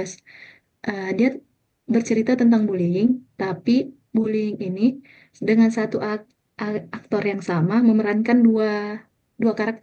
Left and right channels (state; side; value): identical; both; correlation 1.00